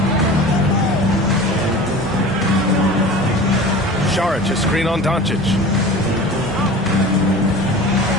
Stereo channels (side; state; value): both; normal; correlation 0.38